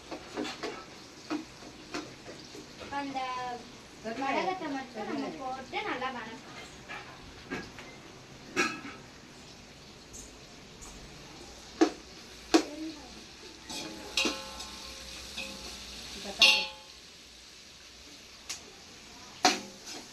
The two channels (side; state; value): both; identical; correlation 1.00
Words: அந்த வடகத்தை மட்டும் நம்ம போட்டு நல்லா வதக்கணும்.